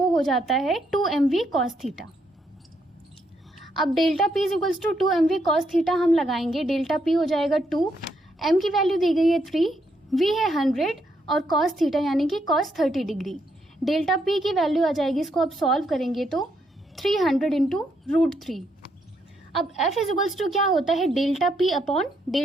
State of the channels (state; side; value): normal; both; correlation 0.76